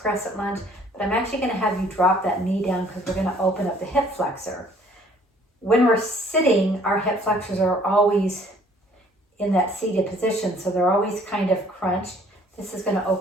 lunge, but I'm actually going to have you drop that knee down because we're going to open up the hip flexor. When we're sitting, our hip flexors are always in that seated position, so they're always kind of crunched. This is going to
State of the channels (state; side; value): normal; both; correlation 0.58